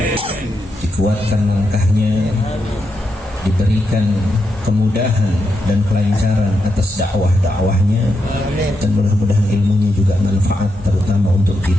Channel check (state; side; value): normal; both; correlation 0.84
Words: dikuatkan langkahnya, diberikan kemudahan dan kelancaran atas dakwah-dakwahnya, dan mudah-mudahan ilmunya juga manfaat terutama untuk